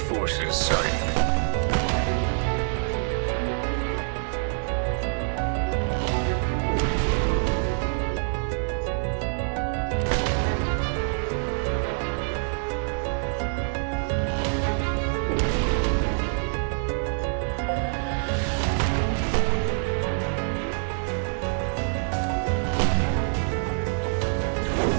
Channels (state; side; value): silent; left; 61 dB below the other